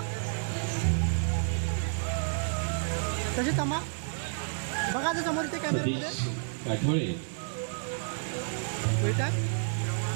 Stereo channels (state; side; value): silent; left; 58 dB below the other